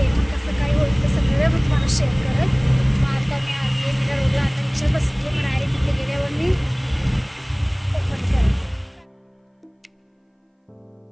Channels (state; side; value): identical; both; correlation 1.00